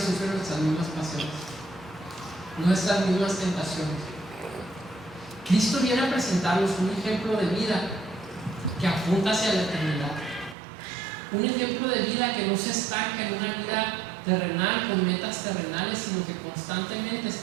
nuestras mismas pasiones, nuestras mismas tentaciones. Cristo viene a presentarnos un ejemplo de vida que apunta hacia la eternidad, un ejemplo de vida que no se estanca en una vida terrenal con metas terrenales, sino que constantemente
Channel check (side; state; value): left; drops out; at 10.6 s